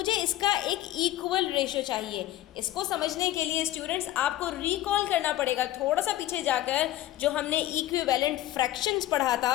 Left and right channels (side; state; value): right; quieter; 14.4 dB